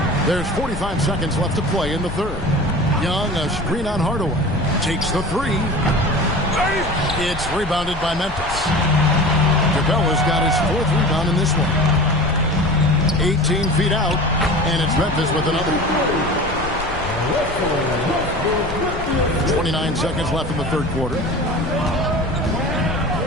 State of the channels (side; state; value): left; noise; rumble, 10 dB below the sound